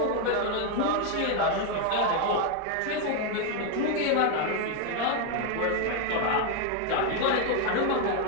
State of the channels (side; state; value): both; different; correlation 0.01